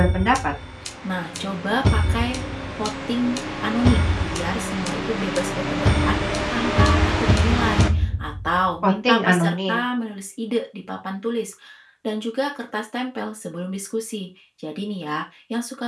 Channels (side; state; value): both; identical; correlation 1.00